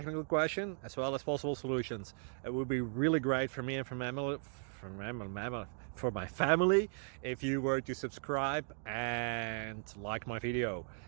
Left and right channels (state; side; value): silent; left; 53 dB below the other